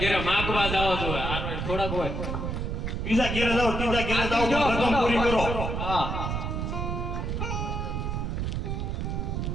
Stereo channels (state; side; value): noise; right; rumble, 2 dB below the sound